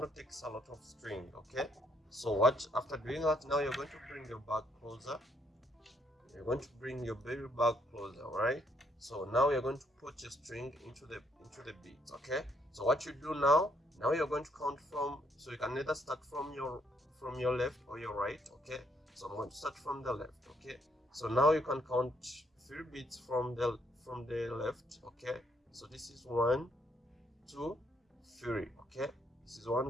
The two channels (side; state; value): both; normal; correlation 0.71